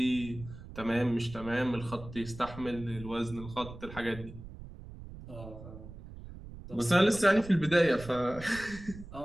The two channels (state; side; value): noise; right; rumble, 14 dB below the sound